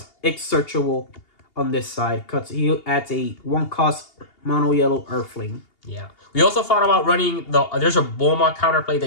it's searchable on this side because he adds a 1-cost mono yellow Earthling. Yeah. We also thought about running there's a Bulma counterplay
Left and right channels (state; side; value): late; right; 2.8 ms